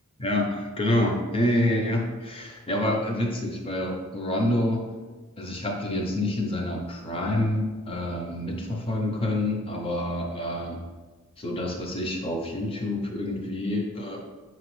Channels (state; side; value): normal; both; correlation 0.59